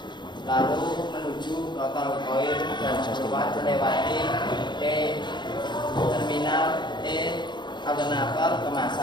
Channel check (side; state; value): right; late; 0.22 ms